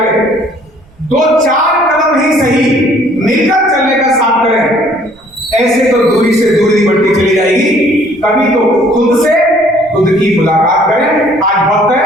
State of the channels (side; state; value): right; noise; rumble, 29 dB below the sound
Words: 2-4 कदम ही सही मिलकर चलने का साथ करें। ऐसे तो दूरी से दूरी बढ़ती चली जाएगी। कभी तो खुद की मुलाकात करें। आज वक्त है